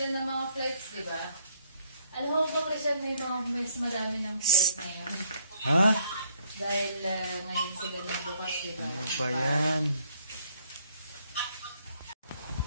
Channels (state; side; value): inverted; both; correlation -0.66